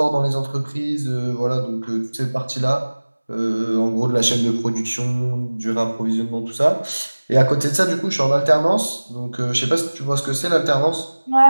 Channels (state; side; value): inverted; both; correlation -1.00